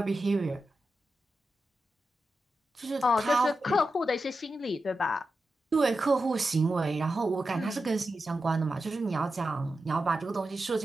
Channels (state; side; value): normal; both; correlation 0.90